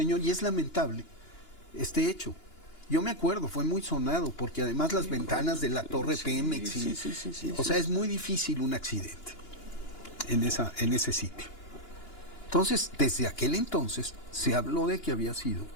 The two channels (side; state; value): right; late; 2.9 ms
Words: Y es lamentable este hecho. Yo me acuerdo, fue muy sonado, porque además las ventanas de la torre Pemex, o sea, es muy difícil un accidente en ese sitio. Entonces, desde aquel entonces se habló de que había sido